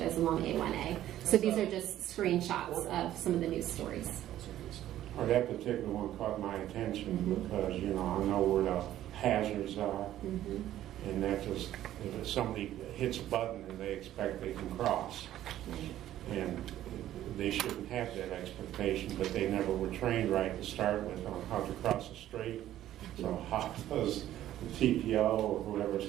along A1A. So these are just screenshots of some of the news stories. Or that particular one caught my attention because, you know, I know where the hazards are. And that just, if somebody hits a button and they expect they can cross. And they shouldn't have that expectation, but they never were trained right to start with on how to cross the street. So how does the TPO or whoever's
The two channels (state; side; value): quieter; left; 12.9 dB